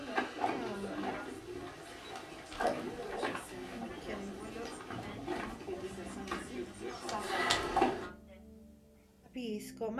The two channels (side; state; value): both; identical; correlation 1.00